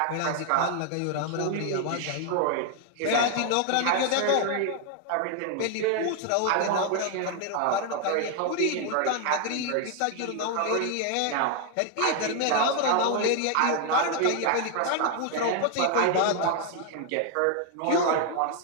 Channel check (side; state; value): both; different; correlation 0.00